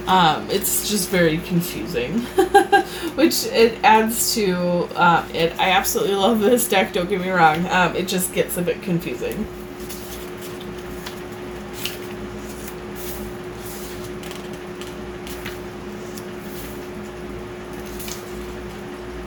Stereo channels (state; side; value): identical; both; correlation 1.00